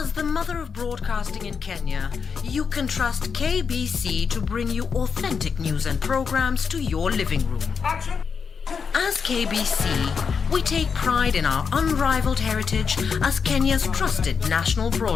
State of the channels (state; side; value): quieter; right; 6.0 dB